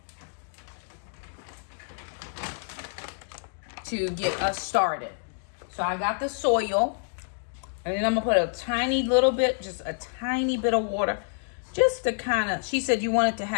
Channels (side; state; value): right; silent; digital silence